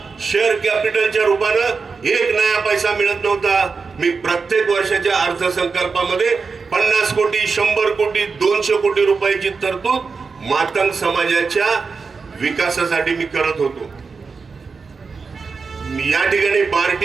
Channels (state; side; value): quieter; left; 4.9 dB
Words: शेअर कॅपिटलच्या रूपानं 1 नया पैसा मिळत नव्हता. मी प्रत्येक वर्षाच्या अर्थसंकल्पामध्ये 50 कोटी, 100 कोटी, 200 कोटी रुपयाची तरतूद मातंग समाजाच्या विकासासाठी मी करत होतो. या ठिकाणी